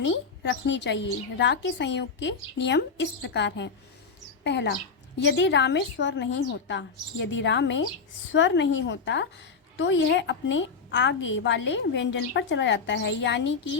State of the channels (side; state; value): right; quieter; 5.0 dB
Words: रखनी चाहिए। रा के संयोग के नियम इस प्रकार हैं। पहला, यदि रा में स्वर नहीं होता, यदि रा में स्वर नहीं होता तो यह अपने आगे वाले व्यंजन पर चला जाता है। यानी